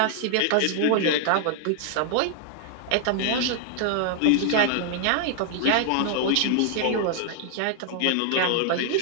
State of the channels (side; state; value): both; different; correlation 0.00